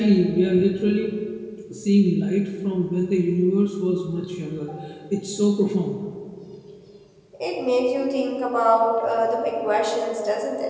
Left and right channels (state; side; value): identical; both; correlation 1.00